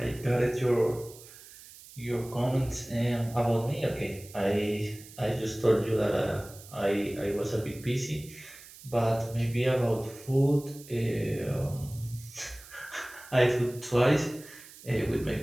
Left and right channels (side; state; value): right; noise; hiss, 19 dB below the sound